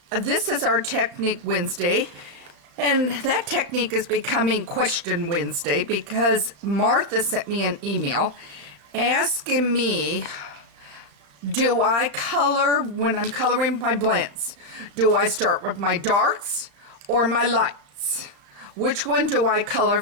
this is our Technique Wednesday. And that technique is becoming Question Wednesday because Martha sent me an email asking me, do I color when I'm coloring my blends? Do I start with my darks or my lights? Which one do I color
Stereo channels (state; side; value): late; left; 35 ms